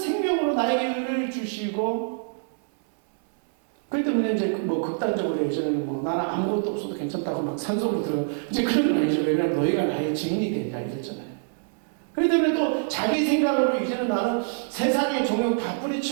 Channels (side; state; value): left; silent; 62 dB below the other